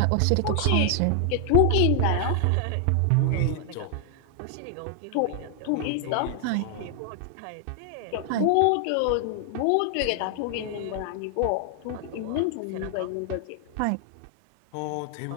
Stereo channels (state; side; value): different; both; correlation 0.00